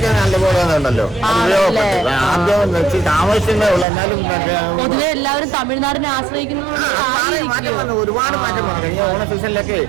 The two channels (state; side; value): drops out; left; at 3.9 s